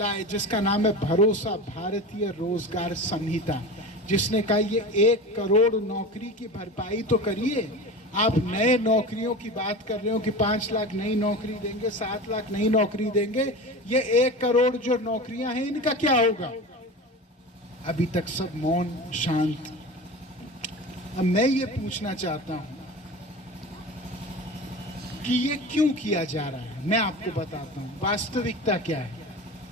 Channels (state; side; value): normal; both; correlation 0.30